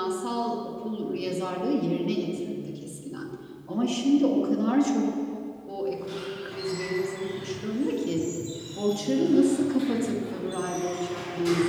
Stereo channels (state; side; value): identical; both; correlation 1.00